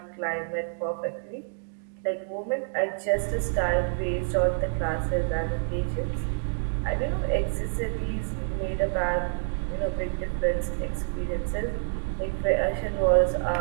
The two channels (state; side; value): silent; left; digital silence